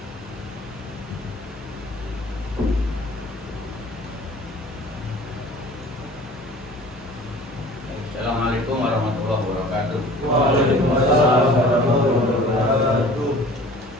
Assalamualaikum warahmatullahi wabarakatuh. Waalaikumsalam warahmatullahi wabarakatuh.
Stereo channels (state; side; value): normal; both; correlation 0.46